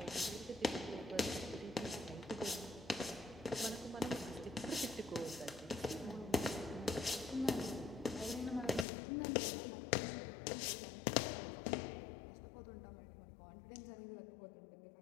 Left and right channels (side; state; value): right; drops out; at 8.8 s